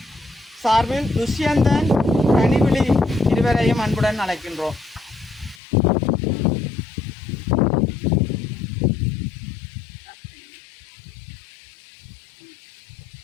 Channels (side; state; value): right; drops out; at 5.6 s